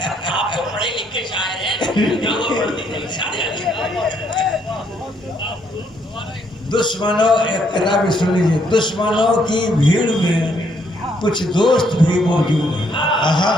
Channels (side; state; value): both; normal; correlation 0.71